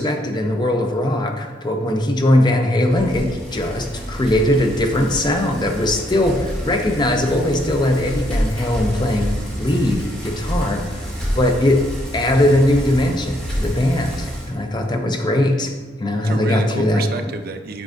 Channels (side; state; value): both; normal; correlation 0.73